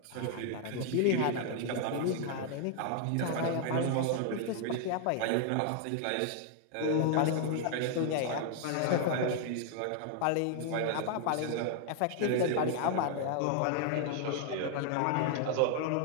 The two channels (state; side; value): different; both; correlation 0.00